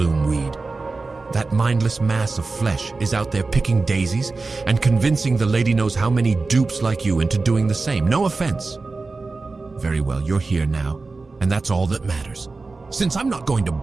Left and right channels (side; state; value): left; quieter; 3.8 dB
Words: That mindless mass of flesh is out there picking daisies and convincing the lady knows how many dupes like you into doing the same. No offense. Very well, you're here now, and that's all that matters. Since I'm not going to